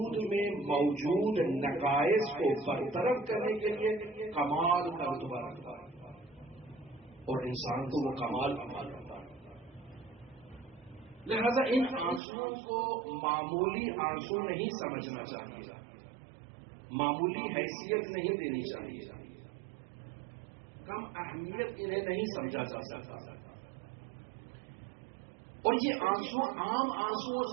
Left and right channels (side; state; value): left; drops out; at 12.2 s